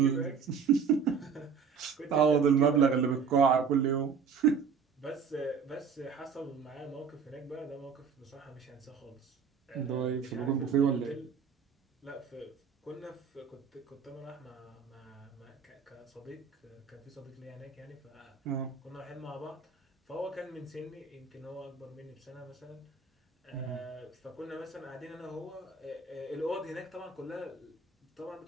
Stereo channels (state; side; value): quieter; left; 6.0 dB